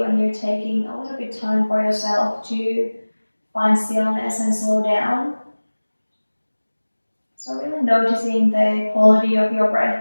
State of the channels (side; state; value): both; inverted; correlation -1.00